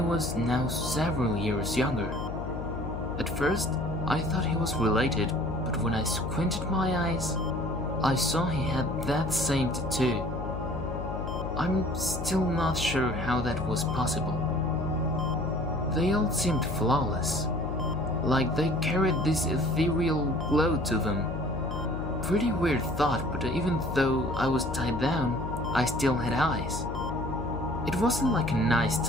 now several years younger. At first, I thought he was related, but when I squinted my eyes, I saw he had that same tattoo. I'm still not sure how that was possible. They all seemed flawless, like they carried this ethereal glow to them. Pretty weird thought, but even though I was tied down, I still had eyes. It wasn't like a nice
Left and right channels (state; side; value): noise; left; hum, 6 dB below the sound